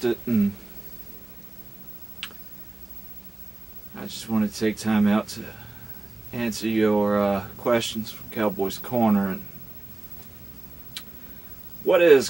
and I just wanted to take time out to answer your questions from Cowboy's Corner. And what is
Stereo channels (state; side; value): quieter; left; 3.0 dB